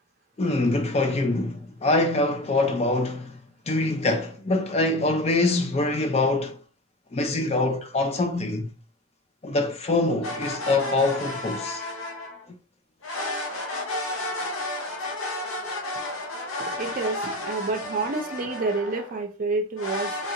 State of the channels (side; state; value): both; normal; correlation 0.29